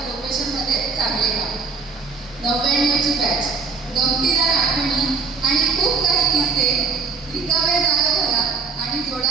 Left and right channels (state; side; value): quieter; left; 4.8 dB